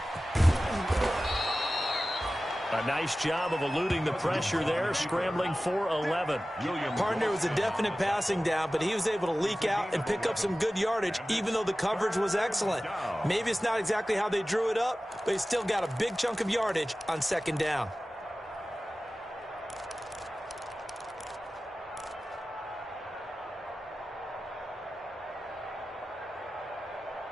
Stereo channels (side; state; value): both; normal; correlation 0.96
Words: A nice job of eluding the pressure there, scrambling for 11. Partner was a definite passing down, but he was able to leak out and pick up some good yardage, even though the coverage was excellent. Maybe it's not exactly how they drew it up, but he still got a big chunk of yardage on 2nd down.